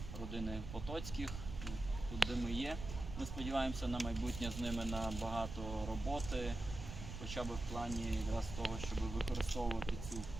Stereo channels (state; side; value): noise; right; rumble, 8 dB below the sound